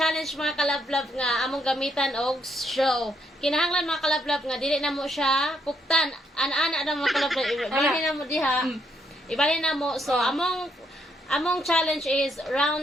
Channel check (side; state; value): both; normal; correlation 0.74